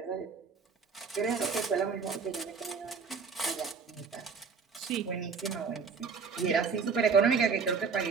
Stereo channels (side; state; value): left; quieter; 5.5 dB